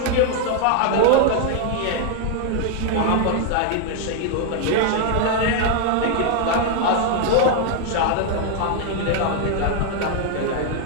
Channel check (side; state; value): both; different; correlation 0.00